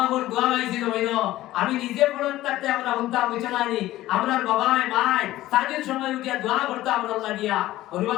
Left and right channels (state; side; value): quieter; right; 15.6 dB